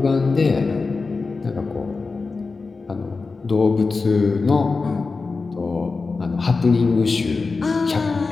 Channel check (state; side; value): quieter; right; 4.2 dB